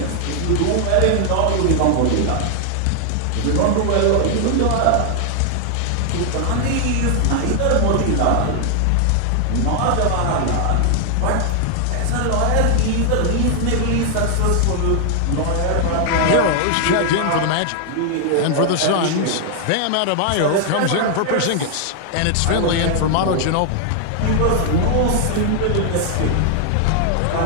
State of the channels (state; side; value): different; both; correlation 0.00